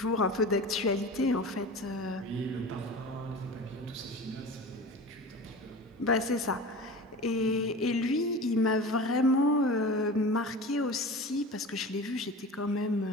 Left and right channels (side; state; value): both; normal; correlation 0.34